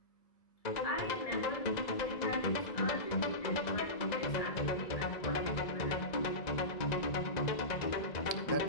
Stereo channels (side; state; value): right; late; 1.9 ms